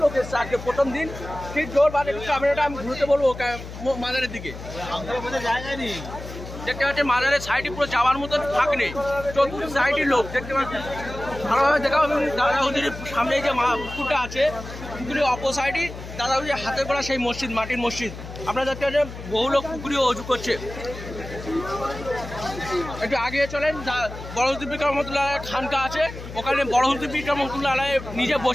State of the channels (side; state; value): left; noise; hum, 11 dB below the sound